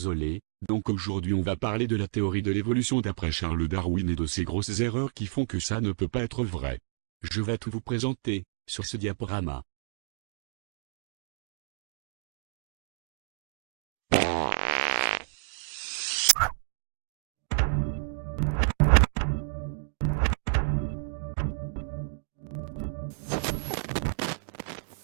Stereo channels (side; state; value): left; silent; digital silence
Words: donc aujourd'hui on va parler de la théorie de l'évolution d'après Charles Darwin et de ces grosses erreurs qui font que ça ne peut pas être vrai. Je vais tout vous présenter, sur ce diaporama.